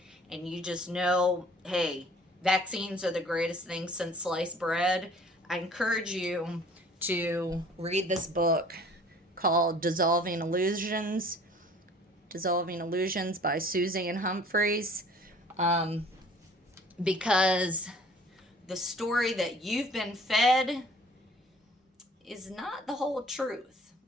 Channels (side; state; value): both; normal; correlation 0.51